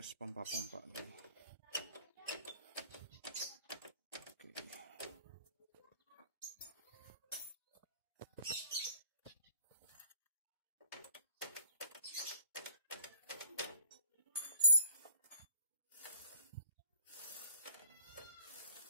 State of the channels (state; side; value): inverted; both; correlation -0.55